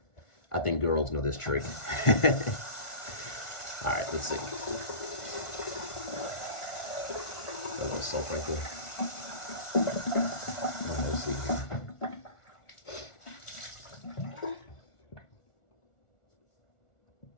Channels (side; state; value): right; late; 1.4 ms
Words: I think girls know this trick. All right, let's see. A little soap right there. All right, let's see here.